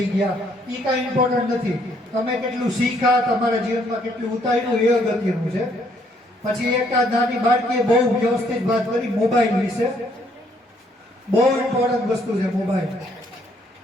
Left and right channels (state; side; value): normal; both; correlation 0.68